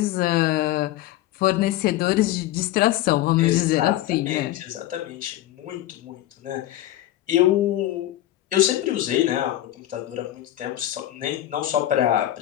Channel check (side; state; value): right; quieter; 14.1 dB